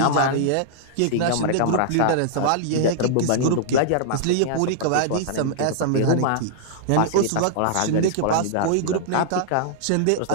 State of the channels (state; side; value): different; both; correlation -0.02